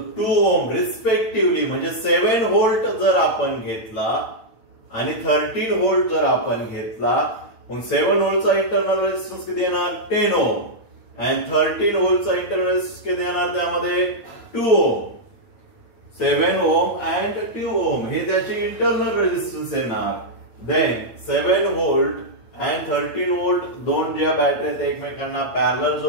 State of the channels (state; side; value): late; right; 8.9 ms